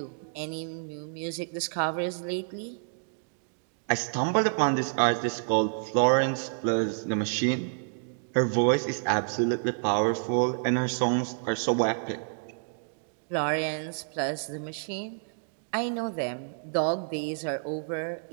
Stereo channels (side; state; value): left; silent; digital silence